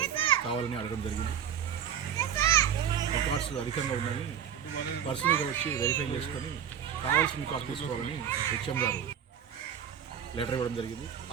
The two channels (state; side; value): quieter; left; 8.9 dB